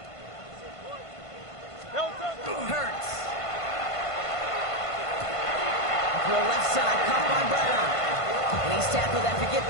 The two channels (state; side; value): late; right; 1.5 ms